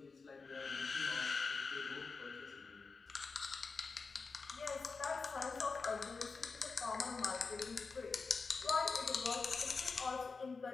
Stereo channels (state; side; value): quieter; right; 4.5 dB